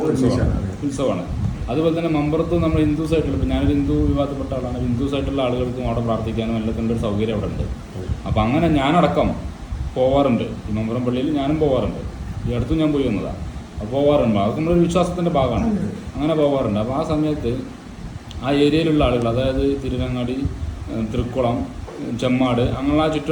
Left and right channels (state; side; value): identical; both; correlation 1.00